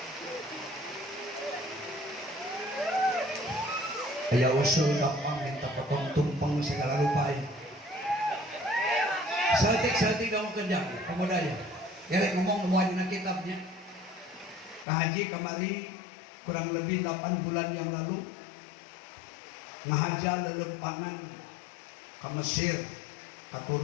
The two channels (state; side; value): drops out; right; at 14.9 s